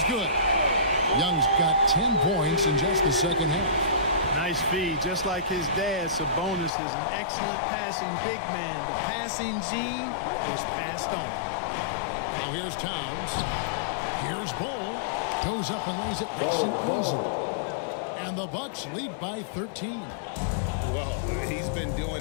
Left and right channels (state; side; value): drops out; right; at 6.7 s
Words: good. Young's got 10 points in just the second half. Nice feed. Just like his dad, Sabonis is an excellent passing big man. The passing gene was passed on. Now here's Towns. Here's Bull. Goes up and lays it nice and easy. And the Bucks lead by 13. Well, he's been